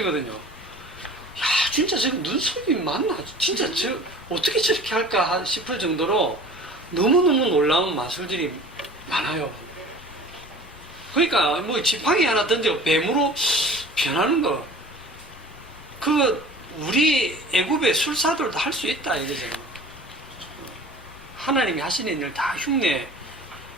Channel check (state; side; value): noise; left; rumble, 22 dB below the sound